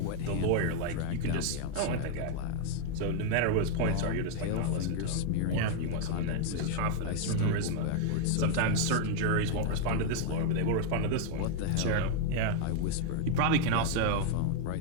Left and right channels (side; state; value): both; different; correlation 0.00